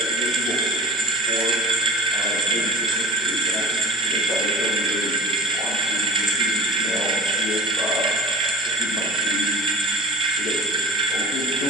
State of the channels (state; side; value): normal; both; correlation 0.41